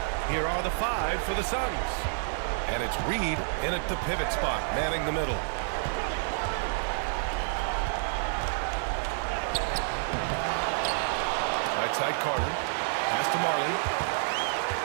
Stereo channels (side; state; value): left; silent; 59 dB below the other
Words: Here are the 5 for the Suns. And it's Reed in at the pivot spot, manning the middle. Right side Carter. Pass to Marley.